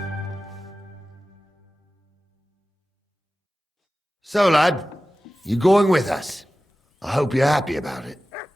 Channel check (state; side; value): normal; both; correlation 0.96